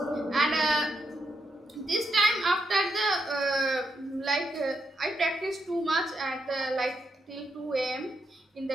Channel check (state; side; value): normal; both; correlation 0.82